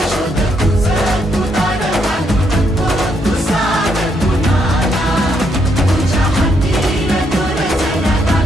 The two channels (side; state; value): both; normal; correlation 0.75